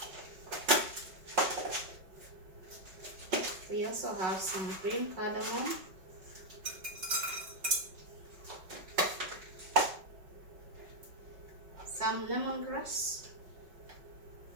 We also have some green cardamom. Some lemongrass.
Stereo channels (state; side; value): late; left; 5.3 ms